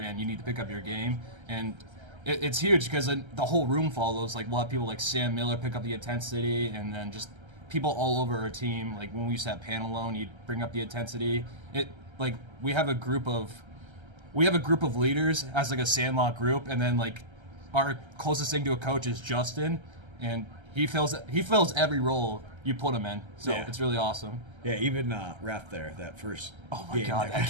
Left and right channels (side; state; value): left; late; 1.3 ms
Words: you need to pick up your game. And it's huge because the whole room follows. Like we'll have people like Sam Miller pick up the intensity, and then just people all over our team. Like when we used to have pan alone, you'd bring up the intensity. Like we have a group of leaders as like a Sandlot group, and then like our closest thing to a coach is Justin, and he fills every role you put him in. So Yeah. it's really awesome. Yeah, even ref there that first. Oh my game god, that